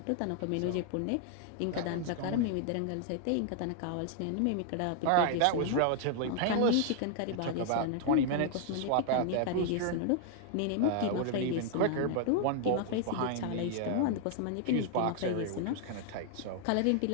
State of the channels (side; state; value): both; different; correlation 0.00